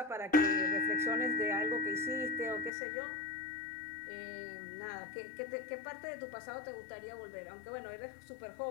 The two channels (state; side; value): drops out; right; at 2.7 s